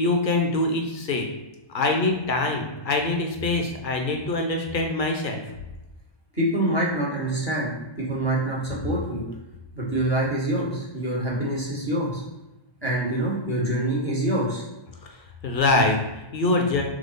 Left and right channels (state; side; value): late; right; 1.5 ms